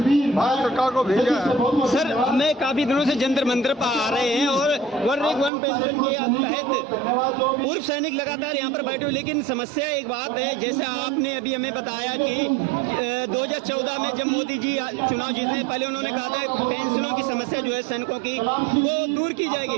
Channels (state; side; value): drops out; left; at 5.5 s